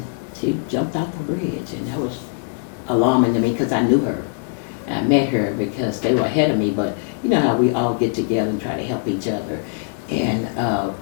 she jumped off a bridge, and that was alarming to me because I knew her. I met her because they were ahead of me, but you know how we all get together and try to help each other. And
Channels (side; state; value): right; quieter; 31.6 dB